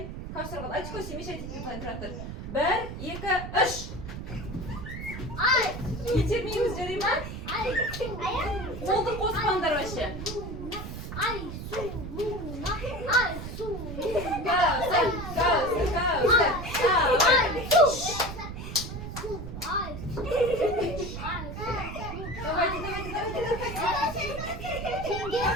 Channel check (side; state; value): right; noise; rumble, 8 dB below the sound